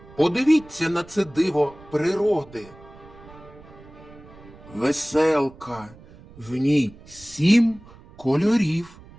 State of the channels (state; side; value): noise; right; rumble, 21 dB below the sound